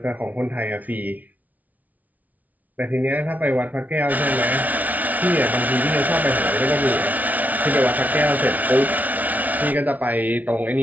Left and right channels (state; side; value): late; left; 0.074 ms